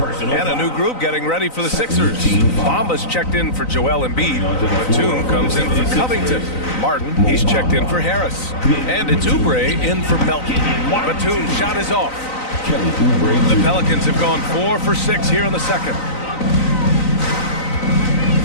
a new group getting ready for the Sixers. Bamba's checked in for Joel Embiid. Batum comes in for Covington. Martin, he's checked in for Harris. And it's Oubre in for Melton. Batum's shot is off. The Pelicans have gone 4 for 6 here in the second.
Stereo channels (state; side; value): late; right; 3.9 ms